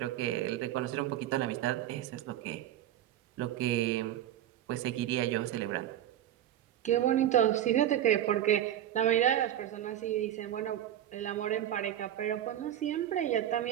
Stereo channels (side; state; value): left; quieter; 11.6 dB